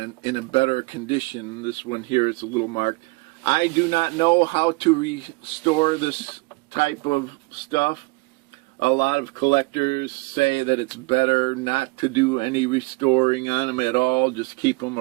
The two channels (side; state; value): left; quieter; 25.9 dB